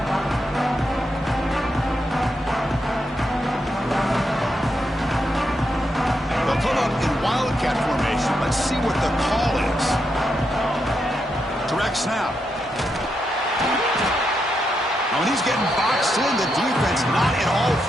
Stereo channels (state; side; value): normal; both; correlation 0.83